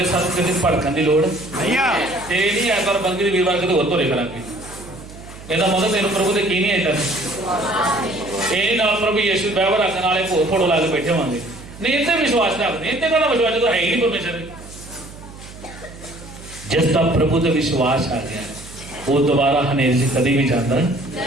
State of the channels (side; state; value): right; noise; hum, 17 dB below the sound